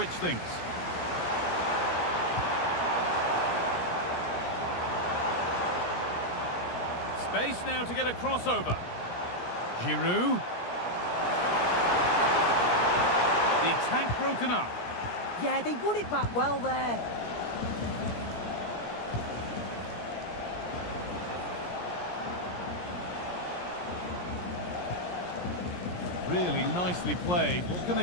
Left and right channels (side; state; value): right; late; 17 ms